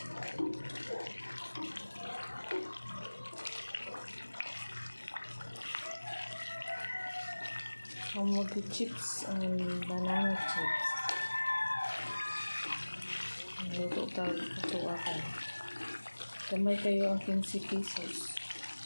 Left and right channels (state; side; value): inverted; both; correlation -1.00